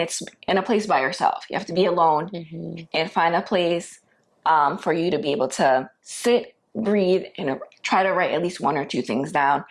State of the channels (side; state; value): both; identical; correlation 1.00